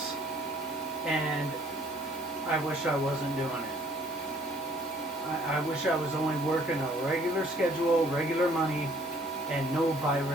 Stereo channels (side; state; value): both; normal; correlation 0.59